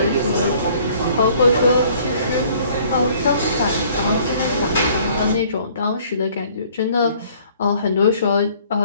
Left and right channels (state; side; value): inverted; both; correlation -0.57